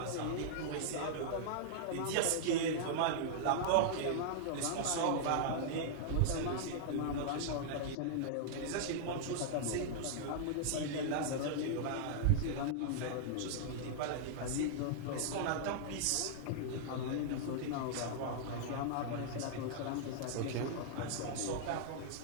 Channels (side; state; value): both; different; correlation -0.01